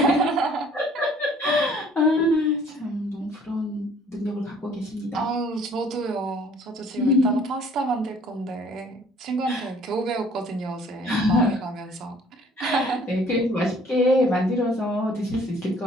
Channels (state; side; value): normal; both; correlation 0.56